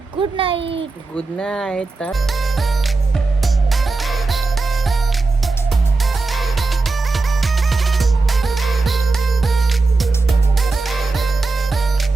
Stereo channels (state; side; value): quieter; left; 3.7 dB